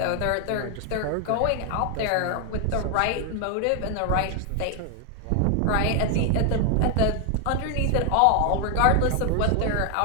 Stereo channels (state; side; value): different; both; correlation 0.00